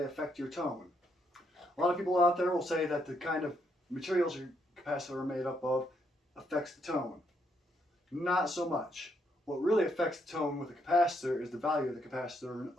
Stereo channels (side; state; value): both; normal; correlation 0.75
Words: affect your tone. A lot of people out there will say that the kind of materials your capacitor are made up of affects the tone. Not so much. What really affects the tone with a capacitor is the value of the capacitor in